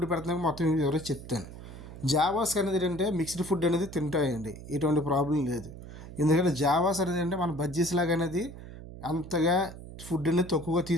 పెడుతున్నాను మొత్తం ఎవరైతే చెప్తాను. జావాస్ అనేది ఏంటంటే మిక్స్డ్ ఫుడ్ అనేది తింటాయండి, ఎటువంటి ప్రాబ్లం లేదు. ఎందుకంటే జావాస్ అనేది అంటే మన బజ్జీస్ లాగా అనేది అంతగా ఫుడ్ అనేది తక్కువగా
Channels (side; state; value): right; noise; hum, 14 dB below the sound